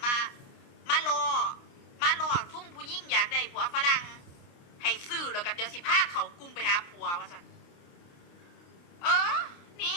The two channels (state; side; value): late; right; 29 ms